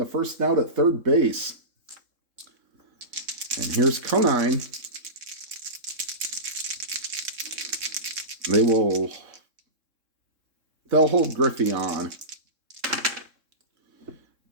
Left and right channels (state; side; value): late; left; 3.7 ms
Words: first out at third base. And here's Conine. They'll hold Griffey on.